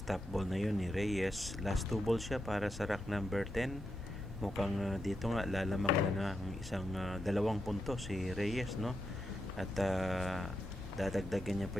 ball na yun ni Reyes. Last 2 ball siya para sa rack number 10. Mukhang dito nga lalamang na ng isang 2 puntos si Reyes, no? At dadagdagan niya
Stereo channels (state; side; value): normal; both; correlation 0.85